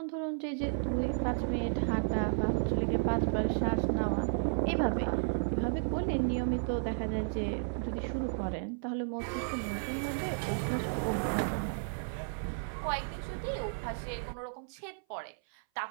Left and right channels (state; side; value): silent; left; 56 dB below the other